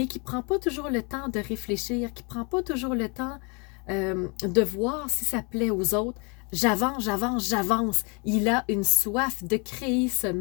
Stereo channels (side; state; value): right; quieter; 32.3 dB